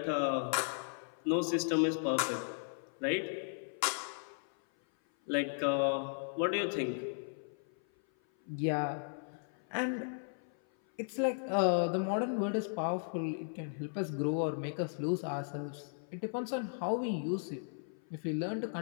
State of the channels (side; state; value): right; silent; 54 dB below the other